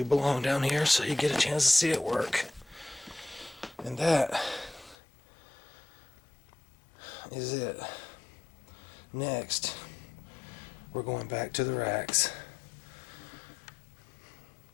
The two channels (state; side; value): drops out; right; at 5.0 s